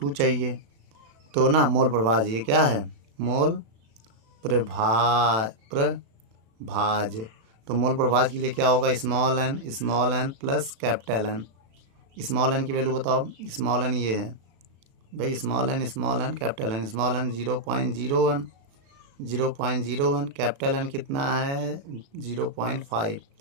चाहिए, तो ना मोल प्रभाज, ये क्या है, मोल प्रभाज। तो मोल प्रभाज के लिए क्या होगा, small N plus capital N. Small N की वैल्यू बताओ, स्मॉल एन ये है भाई, small N capital N. Small N 0.01, capital N कितना है 0.5।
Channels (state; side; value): late; left; 36 ms